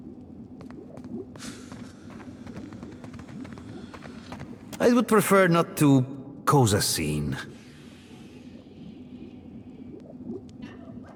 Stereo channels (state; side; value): identical; both; correlation 1.00